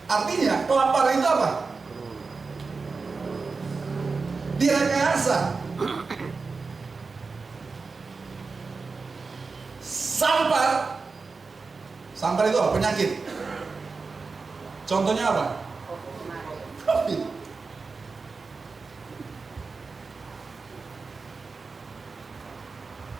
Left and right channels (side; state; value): left; quieter; 4.4 dB